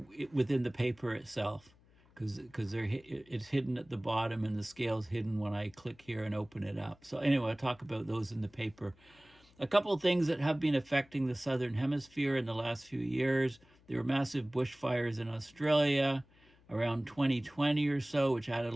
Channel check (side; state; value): left; noise; hum, 29 dB below the sound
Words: within the paper itself, because it's hidden at the bottom and the scale's hidden when I click here and open it up. So anyway, I'll talk about those in the paper. A couple of things that have been affecting the southern hemisphere in the last few years. There were massive bushfires in Australia around 2020 or so, which added